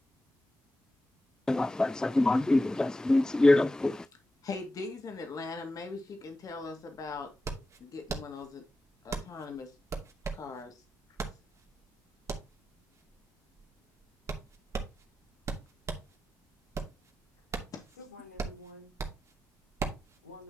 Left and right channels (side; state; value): both; normal; correlation 0.93